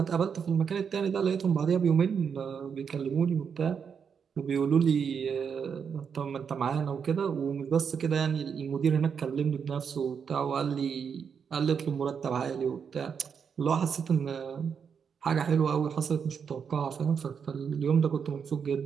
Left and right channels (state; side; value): quieter; left; 6.8 dB